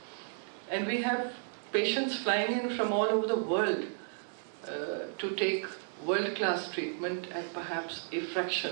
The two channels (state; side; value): silent; left; digital silence